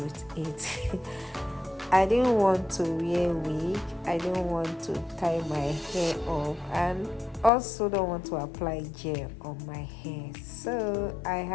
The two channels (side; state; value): right; drops out; at 7.5 s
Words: it. I didn't want to wear wig, I didn't want to tie my hair up, and also don't want to apply gel on my hair. So I